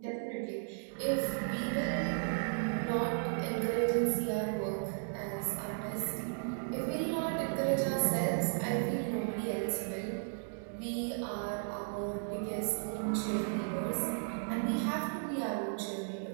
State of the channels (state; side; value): silent; left; digital silence